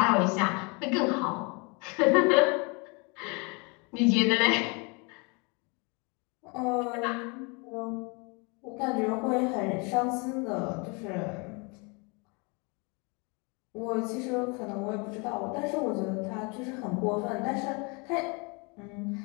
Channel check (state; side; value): quieter; right; 31.0 dB